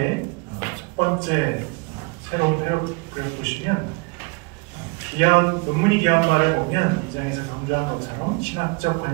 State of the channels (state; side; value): quieter; left; 29.7 dB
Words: 첫 번째 새로운 패러그래프 보시면 논문이 귀한 말을 보면 이 장에서 강조한 것처럼 신학적